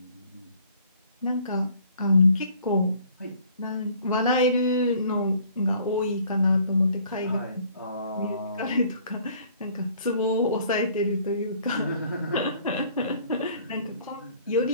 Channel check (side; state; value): both; inverted; correlation -0.57